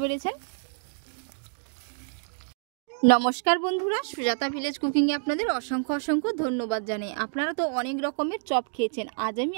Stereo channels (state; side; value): silent; left; digital silence